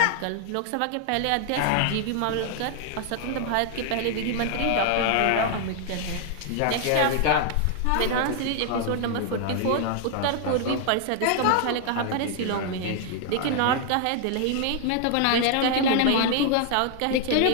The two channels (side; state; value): both; different; correlation 0.00